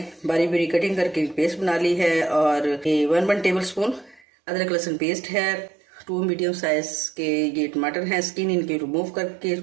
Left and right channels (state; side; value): drops out; left; at 4.2 s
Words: बारी बारी कटिंग करके पेस्ट बना ली है। और ये 1 टेबल स्पून अदरक लहसुन पेस्ट है, 2 मीडियम साइज़ के ये टमाटर हैं, स्किन इनकी रिमूव करके